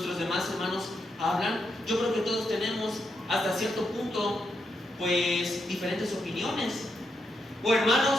demás hermanos hablan? Yo creo que todos tenemos hasta cierto punto pues diferentes opiniones. O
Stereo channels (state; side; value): normal; both; correlation 0.82